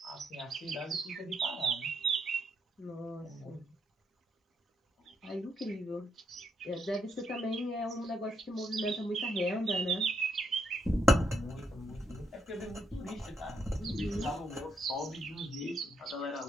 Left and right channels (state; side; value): normal; both; correlation 0.76